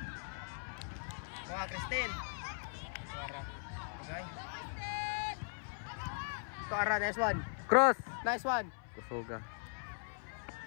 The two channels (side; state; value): right; silent; 52 dB below the other